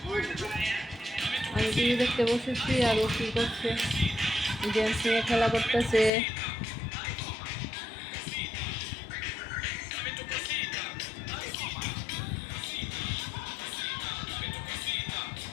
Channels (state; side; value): drops out; right; at 6.1 s